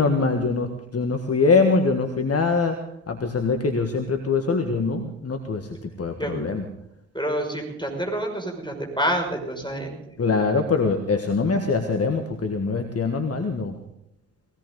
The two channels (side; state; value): right; quieter; 3.2 dB